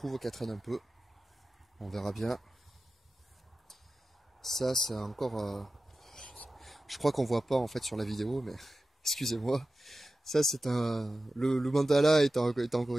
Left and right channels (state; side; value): normal; both; correlation 0.94